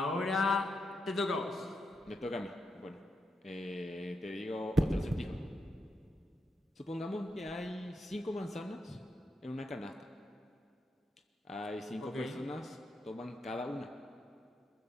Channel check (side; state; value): both; normal; correlation 0.83